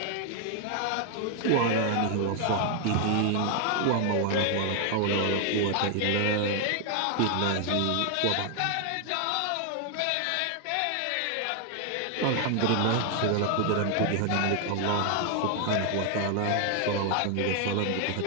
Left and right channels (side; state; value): both; different; correlation 0.00